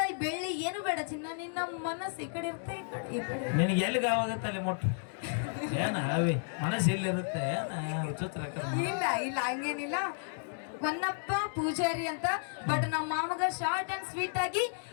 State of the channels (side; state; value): right; silent; digital silence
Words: ಬೆಳ್ಳಿ ಏನು ಬೇಡ ಚಿನ್ನ. ನಿನ್ನ ಮನಸ್ಸು ಈ ಕಡೆ ಇರುತ್ತೆ, ಈ ಕಡೆ ನಿನಗೆ ಎಲ್ಲಿಗೆ ಆವಾಗತ್ತೆ ಅಲ್ಲಿ ಮುಟ್ಟು. ಏನ ಅವಿ ಮನಸ್ಸು ಎಲ್ಲಿರುತ್ತೆ? ವಿಚಿತ್ರ. ಇಲ್ಲ ಇಲ್ಲ ಹಂಗೇನಿಲ್ಲ. ಹೊನ್ನಪ್ಪ ಪೂಜಾರಿ ಅಂತ ಬಟ್ ನಮ್ಮ ಮಾಮಗ ಶಾರ್ಟ್ ಅಂಡ್ ಸ್ವೀಟ್ ಆಗಿ